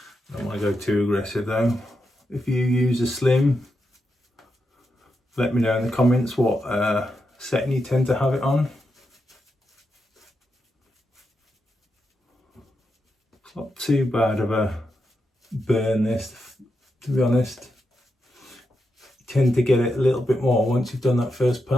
Don't want to go too aggressive though. If you use a slim, let me know in the comments what setting you tend to have it on. It's not too bad of a burn this, to be honest. You tend to get it a little bit more once you've done that first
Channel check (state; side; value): normal; both; correlation 0.86